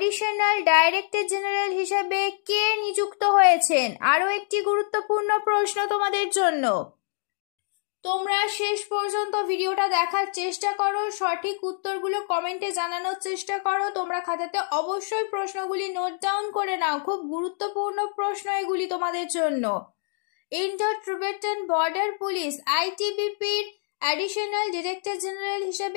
ডাইরেক্টর জেনারেল হিসেবে কে নিযুক্ত হয়েছেন? আরও একটি গুরুত্বপূর্ণ প্রশ্ন তোমাদের জন্য। তোমরা শেষ পর্যন্ত ভিডিওটা দেখার চেষ্টা করো, সঠিক উত্তরগুলো কমেন্টে জানানোর চেষ্টা করো। তোমরা খাতাতে অবশ্যই প্রশ্নগুলি নোট ডাউন করে নাও, খুব গুরুত্বপূর্ণ প্রশ্ন এগুলি তোমাদের জন্য। ইন্ডো টিবেটান বর্ডার পুলিশ ITBPর অ্যাডিশনাল ডিরেক্টর জেনারেল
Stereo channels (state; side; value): silent; right; 61 dB below the other